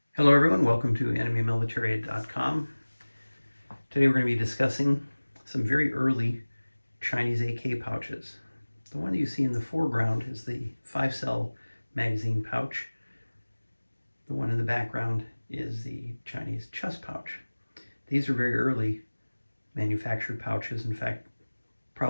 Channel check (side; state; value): both; inverted; correlation -1.00